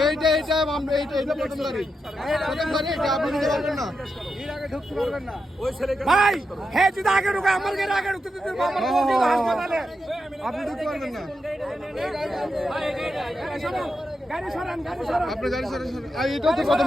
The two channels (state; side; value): normal; both; correlation 0.86